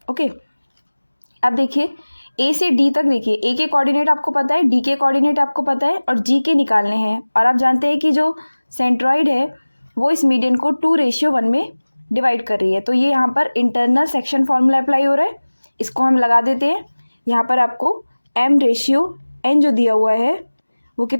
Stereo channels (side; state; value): both; inverted; correlation -1.00